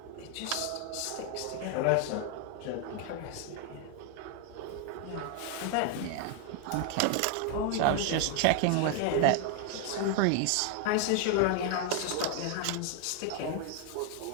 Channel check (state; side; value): different; both; correlation 0.00